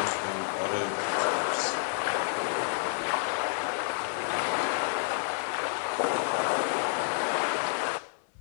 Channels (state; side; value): silent; right; 58 dB below the other